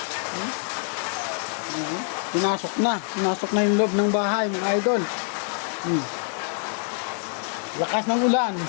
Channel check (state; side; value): silent; right; 57 dB below the other